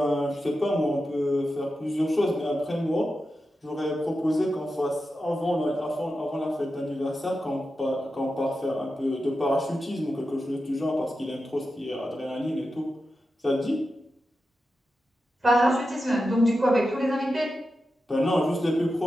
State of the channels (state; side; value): normal; both; correlation 0.90